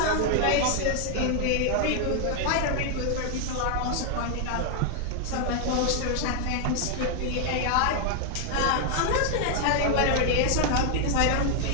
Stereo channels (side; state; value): both; different; correlation 0.00